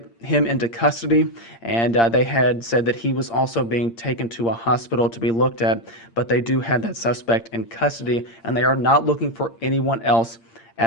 him into custody, and they had said that he was also being taken to a hospital to be looked at, but they do have that suspect in custody, and they are not looking for anyone else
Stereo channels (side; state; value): right; late; 8.7 ms